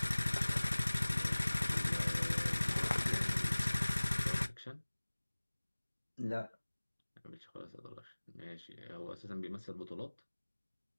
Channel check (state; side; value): inverted; both; correlation -1.00